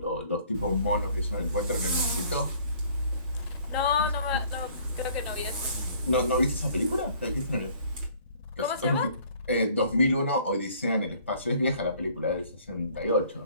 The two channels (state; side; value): inverted; both; correlation -0.56